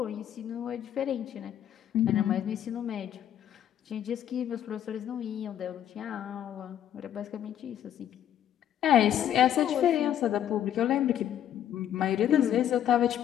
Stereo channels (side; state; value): right; quieter; 10.6 dB